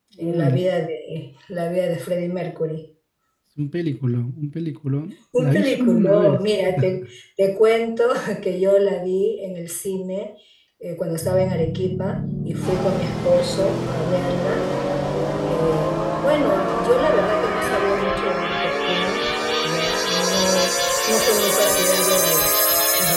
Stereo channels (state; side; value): identical; both; correlation 1.00